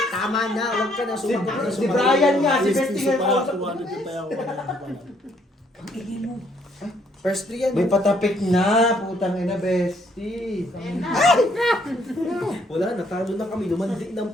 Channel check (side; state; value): both; normal; correlation 0.67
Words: Tama na, huwag ka na sumagot. Si Brian nga, si Yes, Bestie piso nga. pala, 200 yung taya ko. First 3 yan. May patapik na. Putang ina, Bestie. Wala, natalo na kami. Lumandi ng